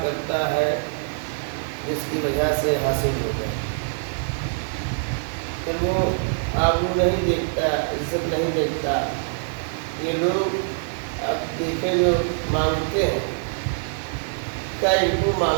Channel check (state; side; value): silent; left; 58 dB below the other